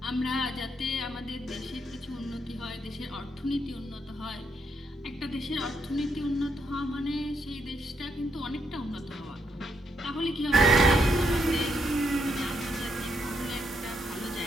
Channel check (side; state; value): both; normal; correlation 0.77